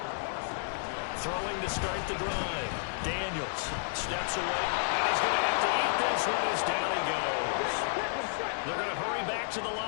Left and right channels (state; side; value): silent; right; digital silence